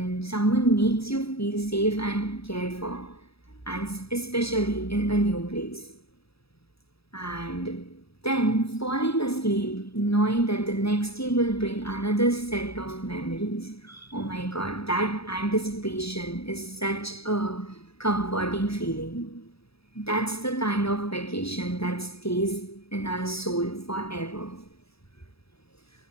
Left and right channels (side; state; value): right; late; 0.77 ms